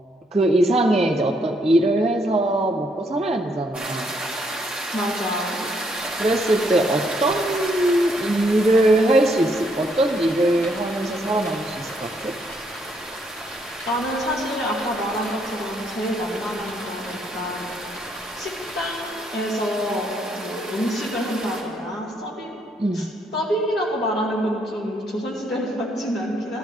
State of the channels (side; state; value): both; normal; correlation 0.72